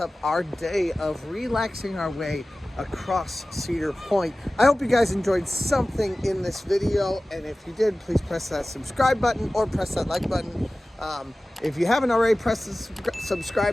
our day of relaxing our way across Cedar Point. I hope you guys enjoyed something in this video, and if you did, please press that subscribe button or press that like button. If you haven't already pressed the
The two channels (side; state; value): both; normal; correlation 0.97